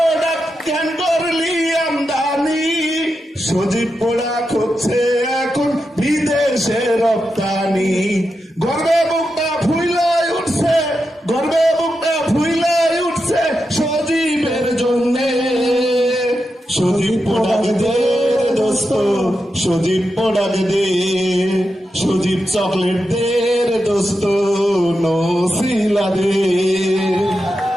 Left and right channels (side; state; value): both; normal; correlation 0.88